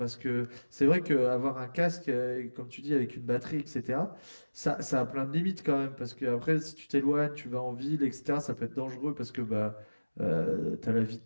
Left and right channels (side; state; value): both; inverted; correlation -1.00